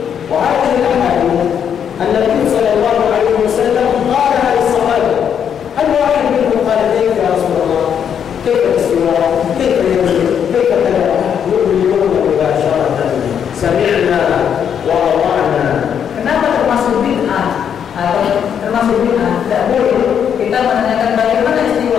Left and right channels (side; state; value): right; quieter; 8.2 dB